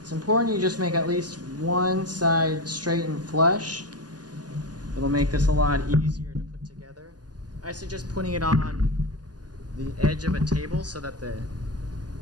important you just make at least one side straight and flush. It'll make this a lot easier to put together. I suggest putting it on the edge of a table so that the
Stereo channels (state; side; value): late; left; 0.69 ms